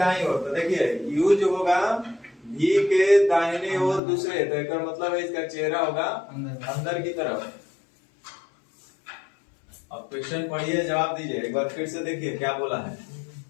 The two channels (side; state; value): right; drops out; at 4.0 s